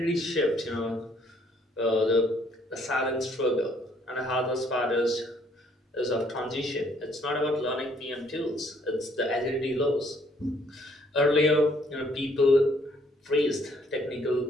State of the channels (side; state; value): both; normal; correlation 0.65